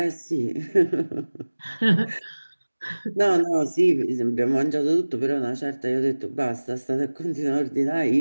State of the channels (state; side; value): inverted; both; correlation -1.00